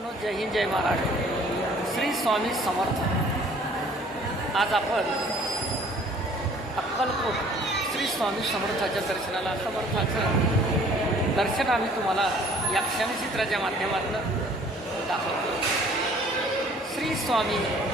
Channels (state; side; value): normal; both; correlation 0.55